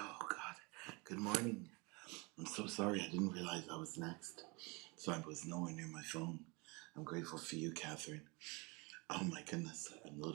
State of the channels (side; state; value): left; quieter; 28.3 dB